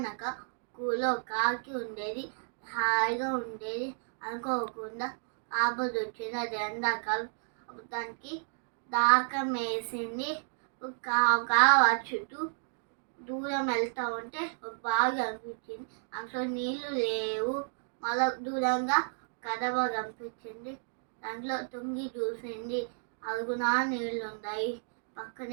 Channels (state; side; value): silent; left; digital silence